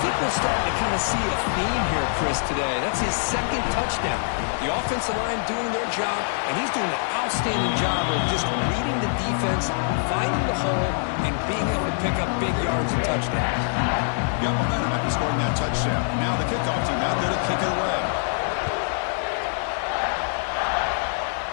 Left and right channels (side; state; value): right; silent; digital silence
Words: think we're starting to kind of see a theme here, Chris, today. That's his 2nd touchdown. The offensive line doing their job, and he's doing an outstanding job of just reading the defense, finding the hole, and being able to pick up big yards and touchdowns. Got momentum after scoring that touchdown. Now the kickoff team out there to kick it away.